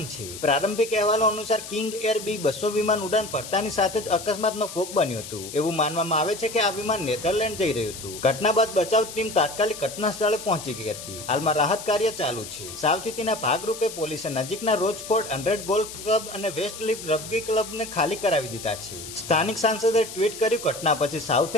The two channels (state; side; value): noise; left; hiss, 11 dB below the sound